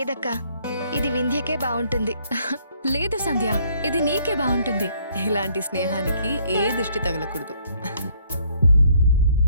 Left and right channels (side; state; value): both; inverted; correlation -0.65